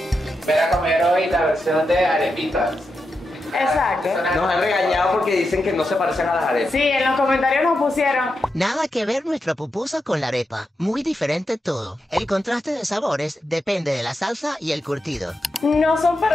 Voy a comer hoy la versión de arepitas. Exacto. Nos han regañado porque dicen que no se parecen a las arepas. Sí, en los comentarios nos pusieron. Nada que ver nuestra pupusa con la arepa. Muy diferente todo. El contraste de sabores depende de la salsa y el curtido. No son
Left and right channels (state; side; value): normal; both; correlation 0.87